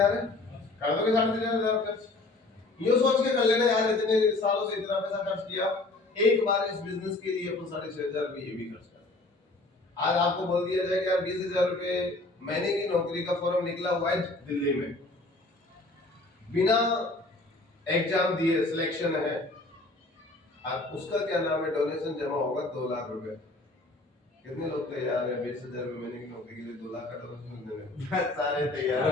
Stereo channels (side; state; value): right; quieter; 3.0 dB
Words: है? कर दोगे 3,500 खर्च? ये सोच के कर लेना यार, इतने सालों से इतना पैसा खर्च किया, एक बार इस बिजनेस के लिए अपन 6,500 रुपये ये भी खर्च कर। आज आपको बोल दिया जाए कि यार 20,000 रुपये महीने की नौकरी का फॉर्म निकला हुआ है दिल्ली में, बिना एग्जाम दिए सिलेक्शन है, आप उसका क्या नाम है, डोनेशन जमा होगा 2 लाख रुपए। कितने लोग तैयार हैं 20,000 रुपये महीने की नौकरी के लिए 2 लाख का डोनेशन देने? सारे तैयार